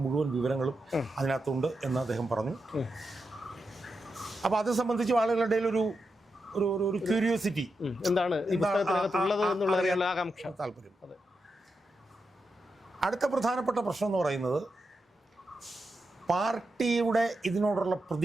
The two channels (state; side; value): normal; both; correlation 0.87